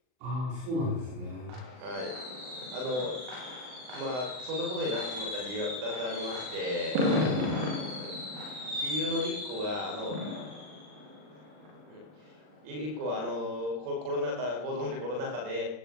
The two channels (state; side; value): late; left; 39 ms